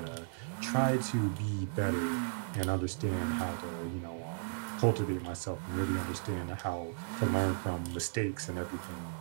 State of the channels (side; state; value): left; silent; digital silence